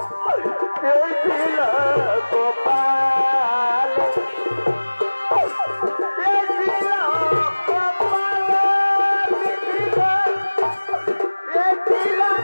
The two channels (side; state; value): both; inverted; correlation -1.00